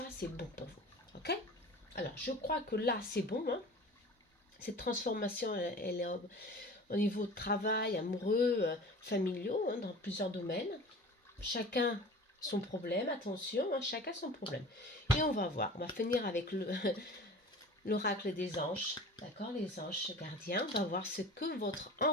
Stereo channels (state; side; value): normal; both; correlation 0.40